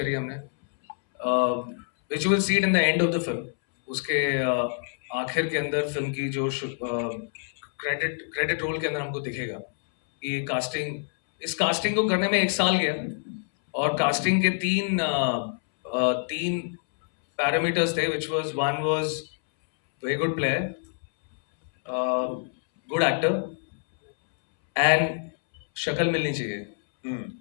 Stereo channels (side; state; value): right; silent; 61 dB below the other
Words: हमने, which will see it in the end of the film. उसके आखिर के अंदर फिल्म की जो क्रेडिट रोल के अंदर हमको दिखेगा कि इस कास्टिंग को करने में 1 साल गया, और कास्टिंग के तीन पैरामीटर्स थे, which was one was very good player, good actor, and शक्ल मिलनी चाहिए.